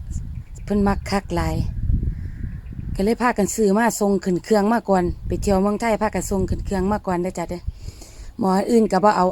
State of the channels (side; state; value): both; identical; correlation 1.00